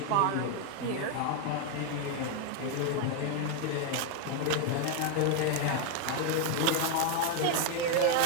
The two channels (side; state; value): both; different; correlation 0.01